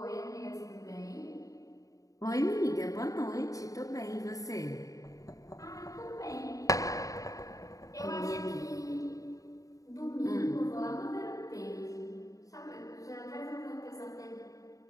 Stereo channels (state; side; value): late; right; 0.16 ms